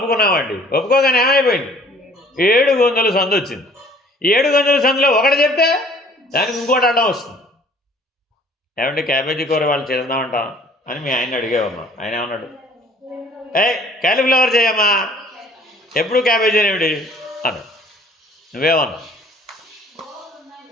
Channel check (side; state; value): both; normal; correlation 0.54